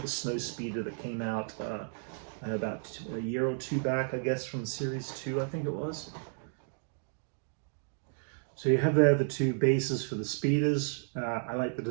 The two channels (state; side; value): silent; left; digital silence